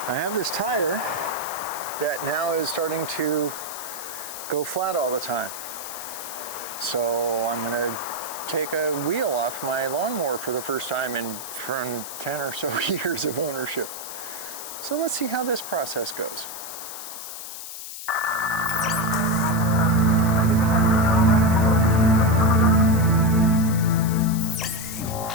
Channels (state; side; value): noise; left; hiss, 10 dB below the sound